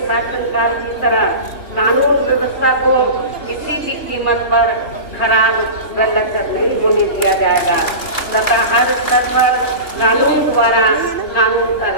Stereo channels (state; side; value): late; right; 2.4 ms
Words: शासनकाल की तरह कानून व्यवस्था को किसी भी कीमत पर खराब व लचर नहीं होने दिया जाएगा तथा हर स्तर पर कानून द्वारा कानून का